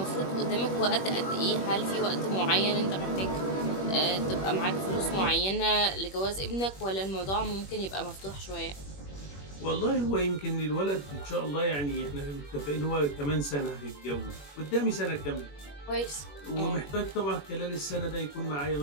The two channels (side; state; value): right; late; 21 ms